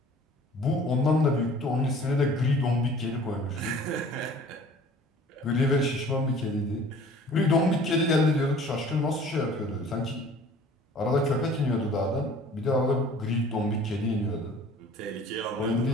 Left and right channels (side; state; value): both; normal; correlation 0.49